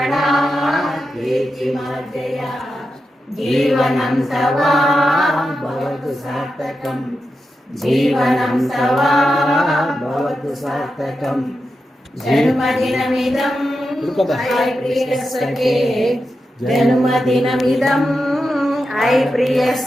कीर्तिमार्जय जीवनं तव भवतु सार्थकम् जीवनं तव भवतु सार्थकम् जन्मदिनमिदं ऐ प्रियसखे जन्मदिनमिदं ऐ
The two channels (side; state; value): both; normal; correlation 0.89